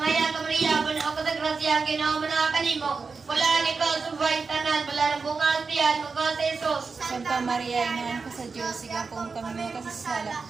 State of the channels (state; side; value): quieter; left; 4.7 dB